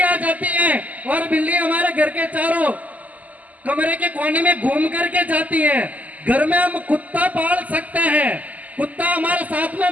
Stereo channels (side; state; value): left; late; 0.076 ms